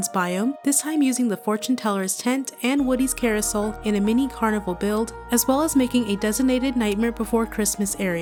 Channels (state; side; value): identical; both; correlation 1.00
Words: biome, this time using the Fortune Teller's tent and Woody's carousel in a mini carnival build, as well as making a designated Nightmare Before Christmas